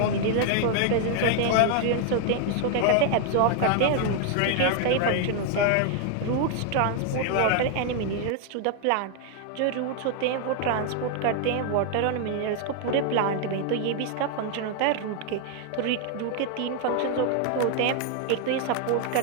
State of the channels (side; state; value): both; different; correlation 0.00